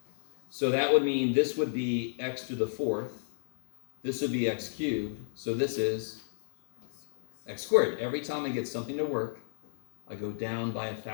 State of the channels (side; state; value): right; silent; digital silence